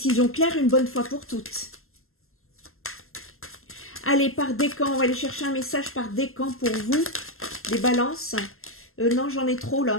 claire une bonne fois pour toutes. Allez, par décan, on va aller chercher un message par décan pour vous, les balances. Non, j'en ai trop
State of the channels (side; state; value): right; late; 0.62 ms